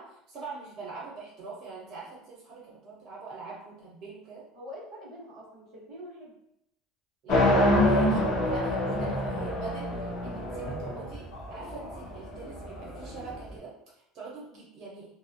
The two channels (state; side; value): normal; both; correlation 0.46